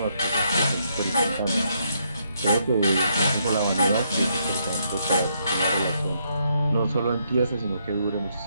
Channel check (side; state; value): both; inverted; correlation -0.75